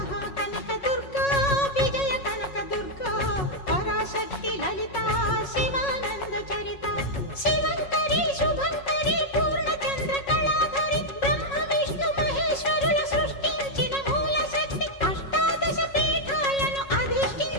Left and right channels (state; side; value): late; right; 5.4 ms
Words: దుర్గా విజయ కనక దుర్గా పరాశక్తి లలిత శివానంద చరిత. శివంకరి శుభంకరి పూర్ణచంద్ర కళాధరి బ్రహ్మ విష్ణు మహేశ్వరుల సృష్టించిన మూల శక్తి అష్టాదశ పీఠాలను